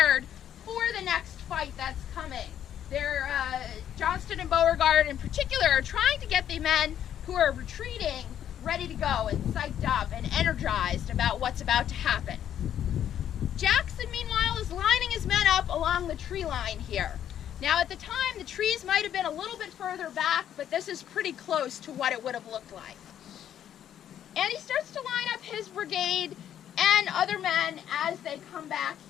for the next fight that's coming. They're, Johnston and Beauregard in particular are trying to get the men who are retreating ready to go and psyched up and energized about what's about to happen. Jackson, meanwhile, is lining his men up along the tree line here. Now, at the time, the trees might have been a little bit further back, but this is pretty close to what it would have looked like. And he starts to line up his brigade and other men as they come back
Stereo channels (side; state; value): right; quieter; 10.2 dB